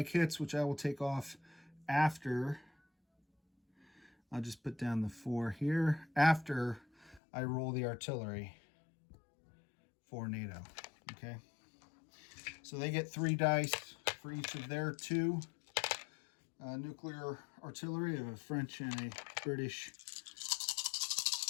hits, which I will take off after. I'll just put down the 4 here after I roll the artillery for NATO. Okay, so they get 3 dice for each of their 2 nuclear artillery. I have a French and a British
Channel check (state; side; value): drops out; right; at 7.2 s